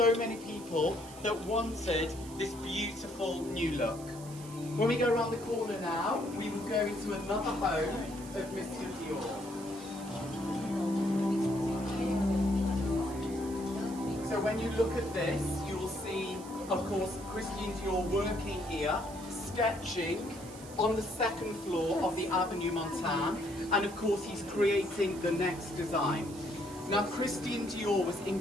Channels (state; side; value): noise; right; hiss, 17 dB below the sound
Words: many people that wanted this beautiful new look. When we go around the corner now, we will go into another home of Monsieur Dior. So when you look at this, you will see, of course, Christian Dior working here, sketching on the second floor of the Avenue Montaigne, and of course he's creating the next design. Now Christian Dior was